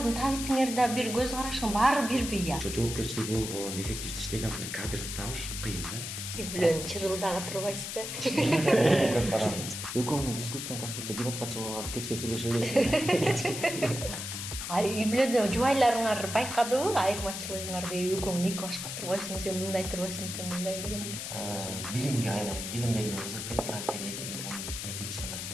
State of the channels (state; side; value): noise; left; hiss, 6 dB below the sound